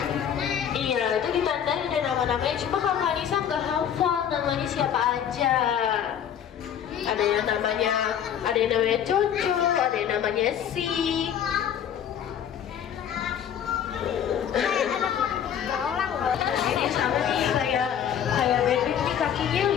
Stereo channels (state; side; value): quieter; right; 9.1 dB